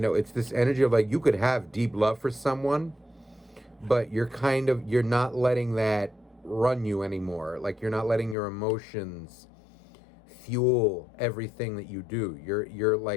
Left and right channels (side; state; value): right; drops out; at 8.3 s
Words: this energy of like you could have deep love for someone, but you're not letting that run you anymore. Like you're not letting your emotions fuel everything that you do. You're